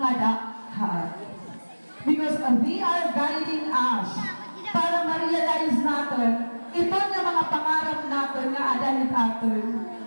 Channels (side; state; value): both; inverted; correlation -1.00